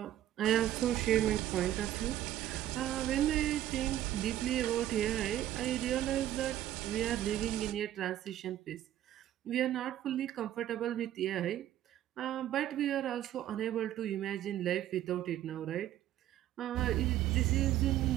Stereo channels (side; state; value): left; quieter; 12.6 dB